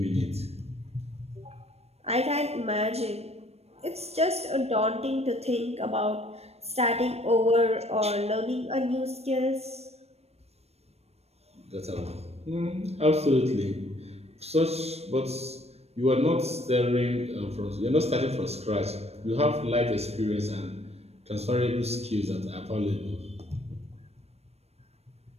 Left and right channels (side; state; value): left; late; 0.31 ms